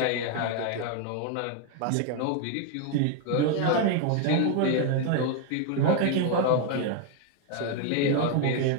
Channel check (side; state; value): both; different; correlation 0.00